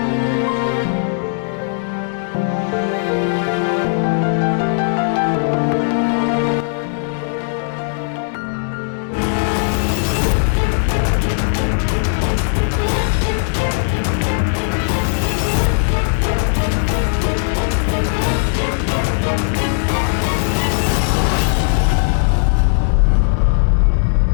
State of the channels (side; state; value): right; silent; digital silence